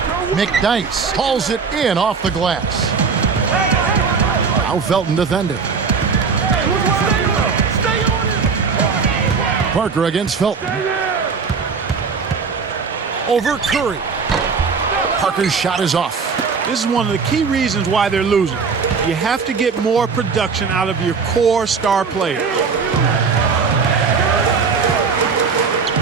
McDyess hauls it in off the glass. Now Felton defending. Parker against Felton. Over Curry. Parker's shot is off. This is one of the key reasons why they're losing. You have to get more production out of your core star players.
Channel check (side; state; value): left; quieter; 5.3 dB